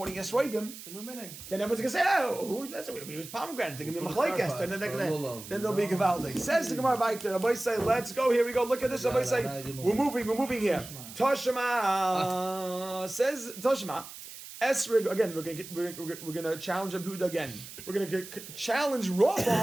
esrogim, the new meaning, then everyone's going to say, oh, who's that? We use pomegranate. They're going to be machlekes. Then they'll be gavaldik. Says the Gemara Vayter. Rabbi say, let's go. Here we go. Look at this. Rabbi say, we're moving here. Toshima says Toshima. Esrig again. We're gonna challenge Rabbi Yehuda again. We're gonna challenge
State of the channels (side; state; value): right; noise; hiss, 14 dB below the sound